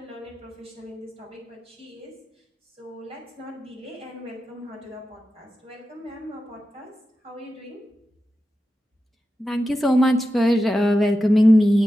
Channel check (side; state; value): both; normal; correlation 0.91